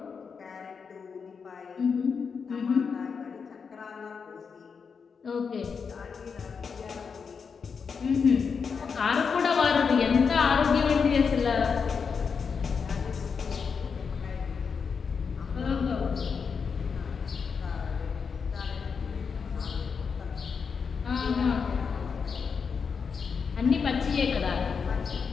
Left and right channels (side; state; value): right; quieter; 5.8 dB